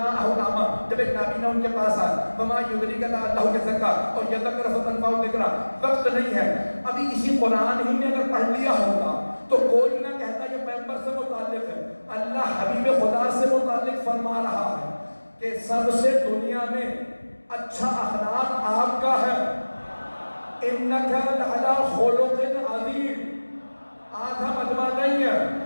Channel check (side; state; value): both; inverted; correlation -1.00